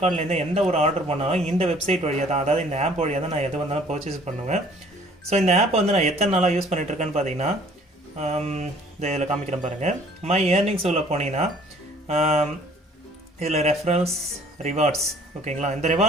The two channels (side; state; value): both; normal; correlation 0.55